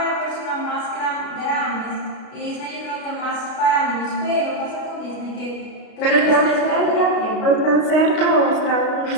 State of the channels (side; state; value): right; late; 32 ms